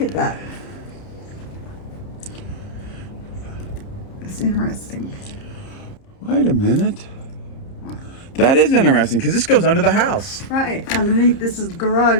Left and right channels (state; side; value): late; right; 30 ms